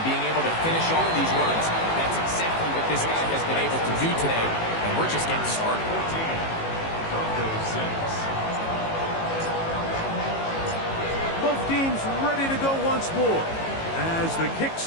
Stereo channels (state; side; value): late; right; 18 ms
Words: being able to finish off these runs. That's exactly what this guy has been able to do today, and we're just getting started. Both teams ready to go once more as the kick's